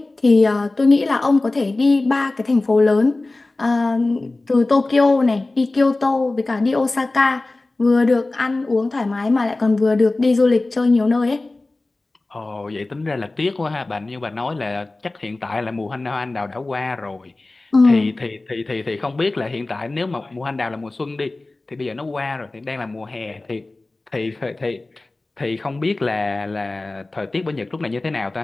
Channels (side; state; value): right; quieter; 3.1 dB